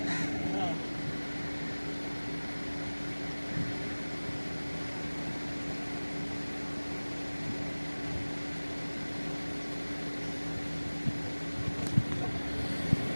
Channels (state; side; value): inverted; both; correlation -1.00